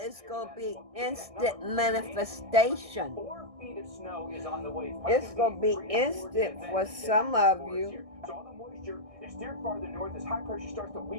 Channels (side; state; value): left; late; 1.6 ms